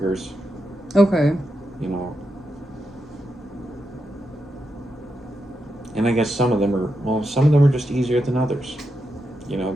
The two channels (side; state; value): both; normal; correlation 0.86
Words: Okay. You know, and I guess some of them are just easier than others.